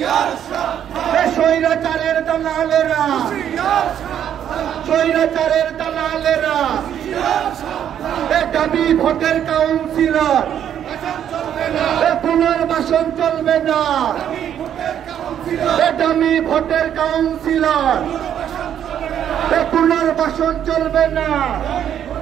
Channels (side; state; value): left; quieter; 9.7 dB